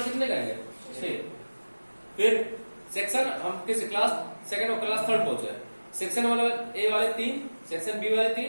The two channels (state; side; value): inverted; both; correlation -1.00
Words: कितने करेंगे, 6। फिर सेक्शन हम किस क्लास सेकंड और क्लास थर्ड पहुंचे, सेक्शन वाले ए वाले 3, सेक्शन बी वाले